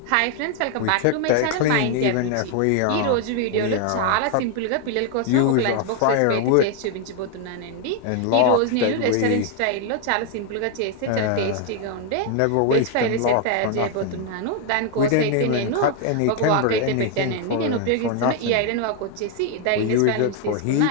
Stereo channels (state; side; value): different; both; correlation 0.00